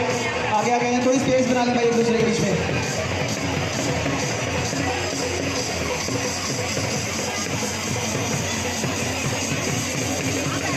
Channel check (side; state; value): both; identical; correlation 1.00